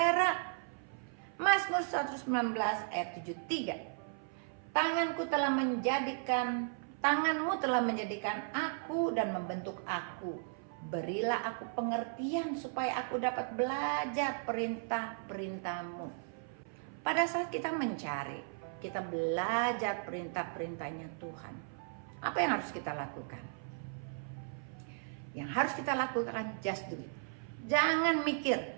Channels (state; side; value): silent; left; 54 dB below the other